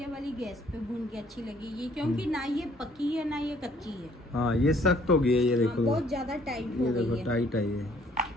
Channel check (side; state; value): both; normal; correlation 0.61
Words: वाली गैस पे भून के अच्छी लगेगी, क्योंकि ना ये पकी है ना ये कच्ची है। हाँ ये सख्त हो गई है, ये देखो बहुत ज्यादा टाइट हो गई है, टाइट है ये,